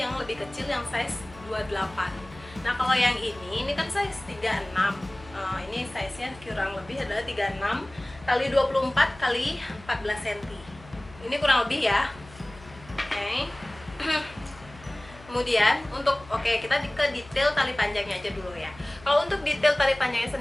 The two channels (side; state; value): left; noise; hum, 21 dB below the sound